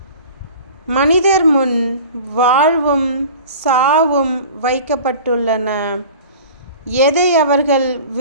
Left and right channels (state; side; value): inverted; both; correlation -0.41